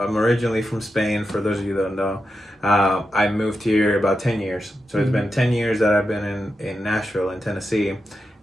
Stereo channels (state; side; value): normal; both; correlation 0.88